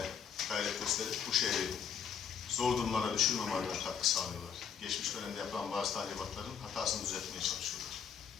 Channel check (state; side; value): quieter; right; 7.5 dB